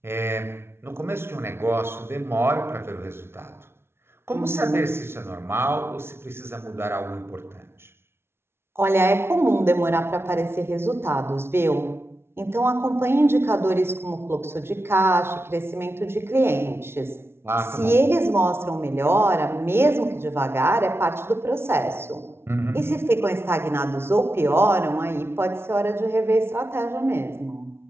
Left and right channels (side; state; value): left; late; 0.12 ms